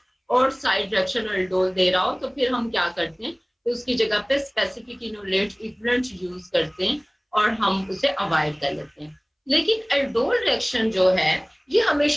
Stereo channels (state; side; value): identical; both; correlation 1.00